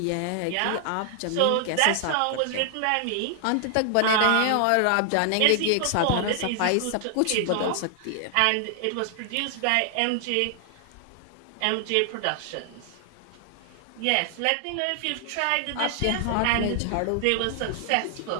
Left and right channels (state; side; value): different; both; correlation 0.00